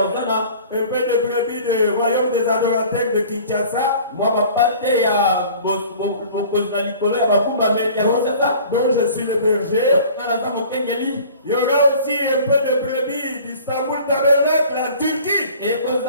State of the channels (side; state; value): both; inverted; correlation -0.47